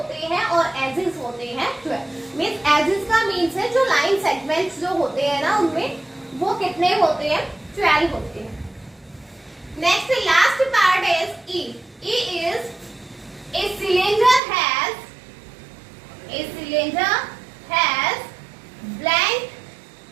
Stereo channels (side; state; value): left; drops out; at 14.4 s